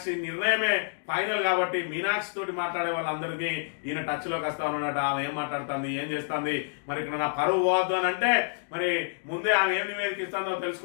నిర్ణయమే ఫైనల్ కాబట్టి మీనాక్షి తోటి మాట్లాడే వాళ్ళందరికీ ఈయన టచ్ లోకి వస్తా ఉన్నాడట. ఆమె ఏం మాట్లాడుతుంది, ఏం చేస్తుంది, మరి ఇక్కడ నా పరువు పోవద్దు అని అంటే మరి ముందే ఆమె ఏం నివేదిక ఇస్తుందో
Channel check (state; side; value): silent; right; digital silence